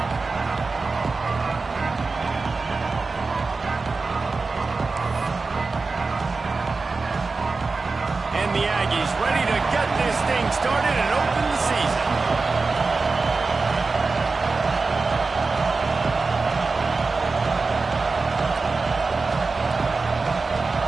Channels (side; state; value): left; quieter; 4.0 dB